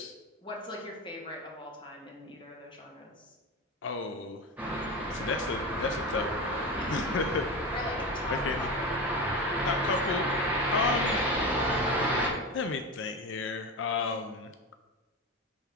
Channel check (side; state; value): both; normal; correlation 0.23